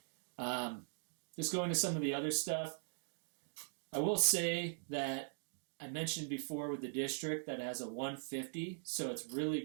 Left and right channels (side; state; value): left; silent; digital silence